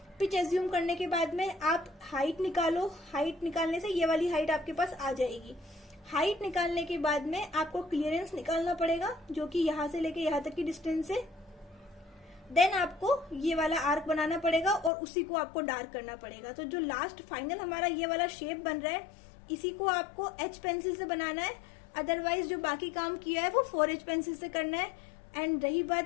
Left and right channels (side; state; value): right; drops out; at 14.9 s